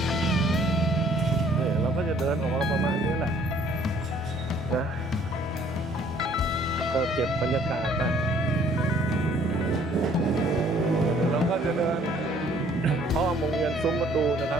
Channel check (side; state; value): both; normal; correlation 0.60